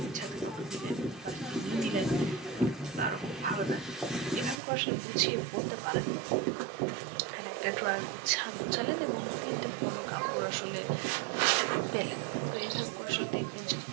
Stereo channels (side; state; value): left; drops out; at 4.6 s